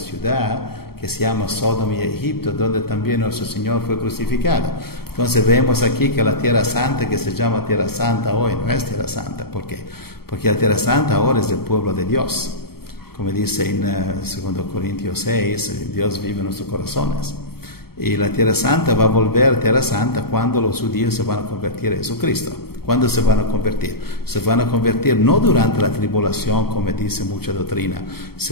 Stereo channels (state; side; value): late; right; 0.95 ms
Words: que se llama Sodoma y Egipto, donde también nuestro Señor fue crucificado. Entonces vemos aquí que la Tierra Santa, que se llama Tierra Santa hoy, no es Tierra Santa. ¿Por qué? Porque la Tierra Santa ahora es del pueblo de Dios. Como dice en 2 Corintios 6, Dios vive en nuestros corazones. Y la Tierra Santa va a volver Tierra Santa cuando los judíos se van a convertir a Jesucristo. ¿Cuándo se van a convertir? Se van a convertir no durante la tribulación, como dice mucha doctrina.